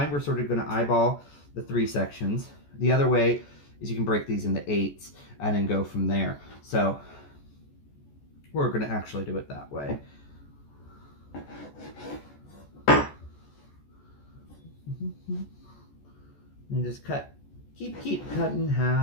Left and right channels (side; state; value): right; late; 14 ms